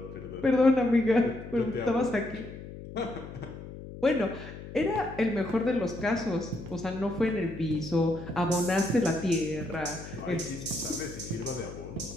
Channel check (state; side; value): noise; left; hum, 12 dB below the sound